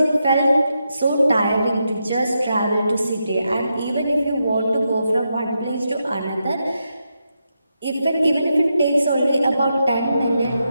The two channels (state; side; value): inverted; both; correlation -0.85